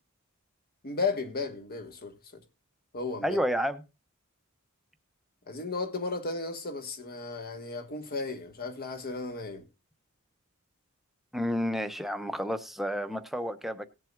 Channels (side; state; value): both; normal; correlation 0.42